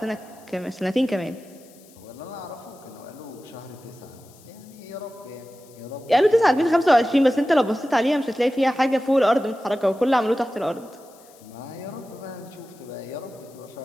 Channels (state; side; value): noise; left; hiss, 26 dB below the sound